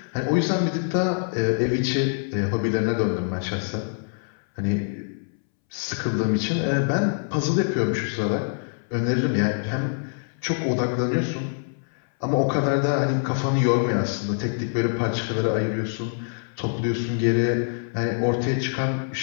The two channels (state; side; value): silent; right; 62 dB below the other